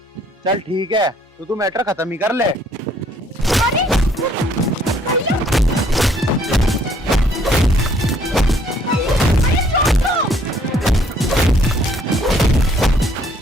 चल ठीक है, तो तू मैटर खत्म ही कर ले।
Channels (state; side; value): normal; both; correlation 0.63